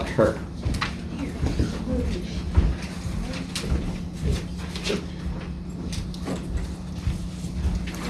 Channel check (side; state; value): both; identical; correlation 1.00